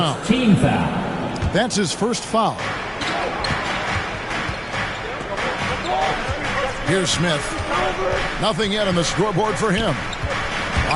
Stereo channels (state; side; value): identical; both; correlation 1.00